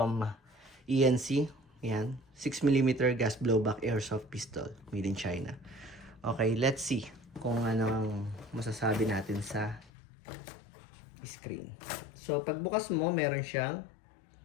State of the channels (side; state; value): right; drops out; at 9.9 s